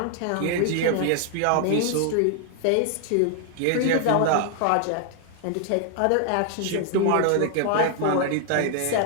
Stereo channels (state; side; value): different; both; correlation 0.00